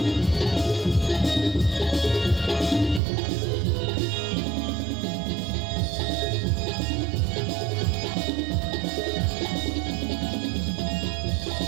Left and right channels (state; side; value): drops out; left; at 3.0 s